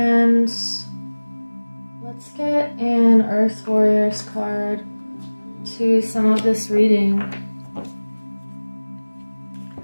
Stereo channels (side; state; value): both; inverted; correlation -1.00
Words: let's get an Earth Warriors card to sum up this reading.